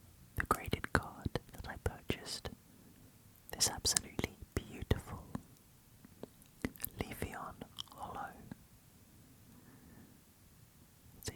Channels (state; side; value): identical; both; correlation 1.00